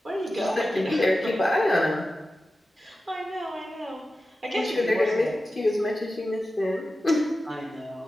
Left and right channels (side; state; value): both; normal; correlation 0.93